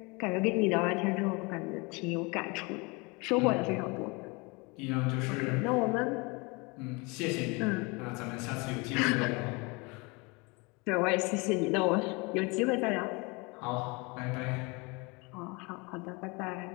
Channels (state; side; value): quieter; right; 27.9 dB